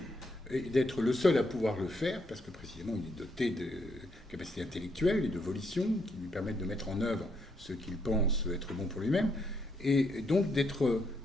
et d'être le seul à pouvoir le faire, parce que précisément il est doté de capacités intellectuelles et de volition qui lui permettent de mettre en œuvre ce qu'il pense être bon pour lui-même, et donc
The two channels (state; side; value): normal; both; correlation 0.75